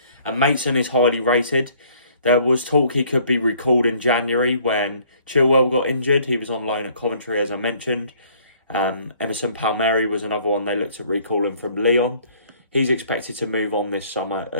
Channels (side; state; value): both; inverted; correlation -0.59